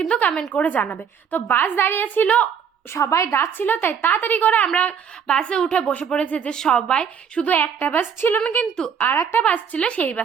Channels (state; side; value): quieter; left; 7.4 dB